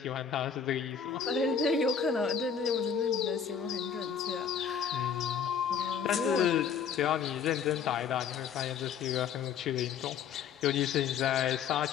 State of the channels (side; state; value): right; quieter; 7.2 dB